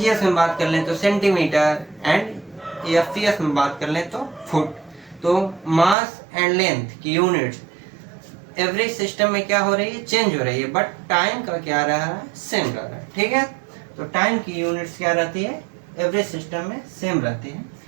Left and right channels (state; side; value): drops out; left; at 6.0 s